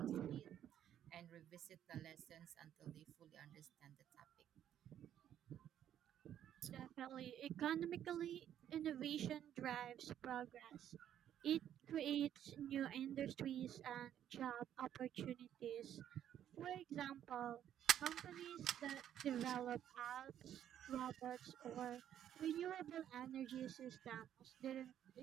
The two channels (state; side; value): quieter; left; 10.5 dB